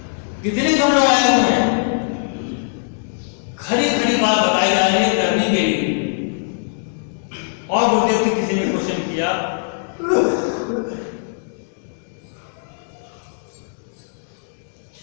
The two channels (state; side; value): silent; right; digital silence